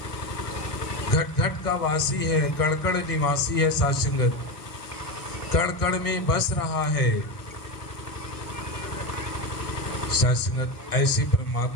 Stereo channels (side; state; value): right; late; 1.6 ms